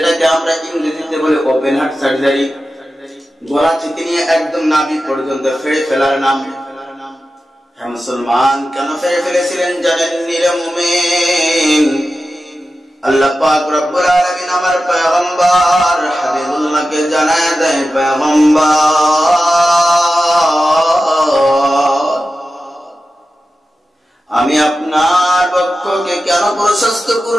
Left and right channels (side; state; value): both; normal; correlation 0.93